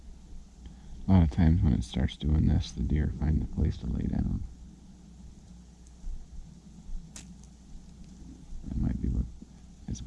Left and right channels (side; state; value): both; identical; correlation 1.00